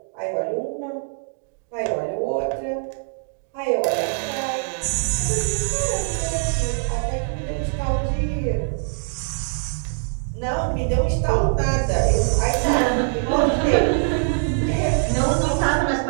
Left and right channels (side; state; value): left; silent; digital silence